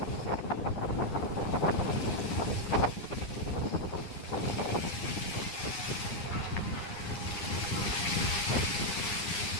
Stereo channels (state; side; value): late; right; 9.8 ms